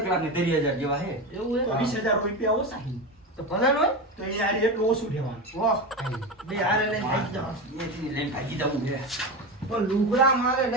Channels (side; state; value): both; normal; correlation 0.20